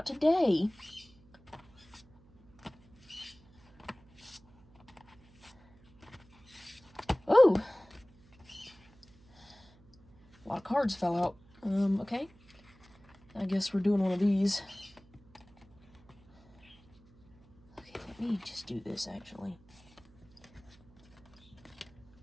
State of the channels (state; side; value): noise; right; hum, 27 dB below the sound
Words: today. Oh! A lot of cards fell out. Okay. I guess we're doing one of these. Okay, let me just do this, actually.